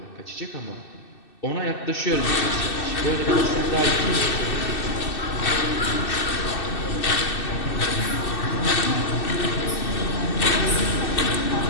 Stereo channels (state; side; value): late; right; 2.6 ms